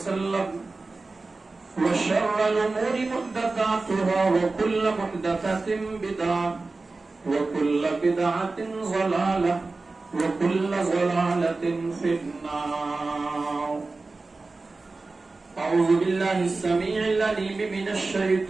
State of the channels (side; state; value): left; quieter; 3.6 dB